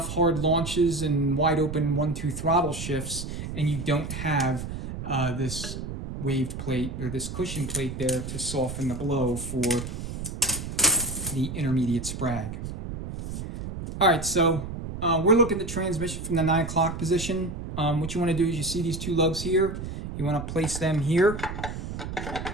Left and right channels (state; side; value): noise; right; rumble, 7 dB below the sound